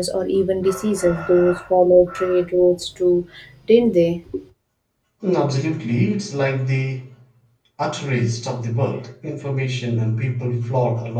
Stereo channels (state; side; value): identical; both; correlation 1.00